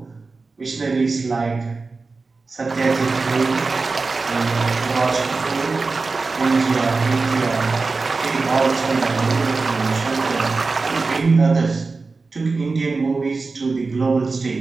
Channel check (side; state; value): left; quieter; 4.0 dB